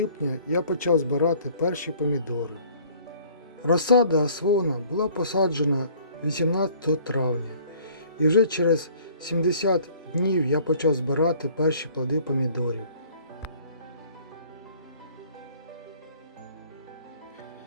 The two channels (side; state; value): both; inverted; correlation -0.55